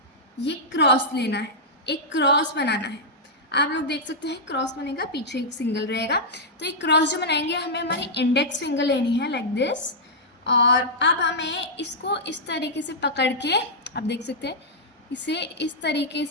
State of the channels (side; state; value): both; normal; correlation -0.08